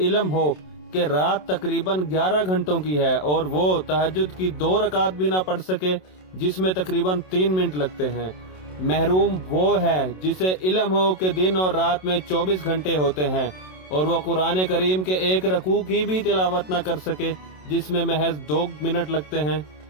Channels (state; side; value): late; right; 27 ms